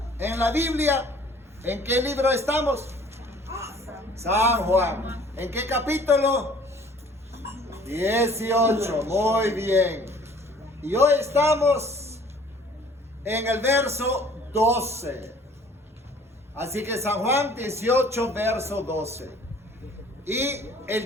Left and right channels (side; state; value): both; normal; correlation 0.53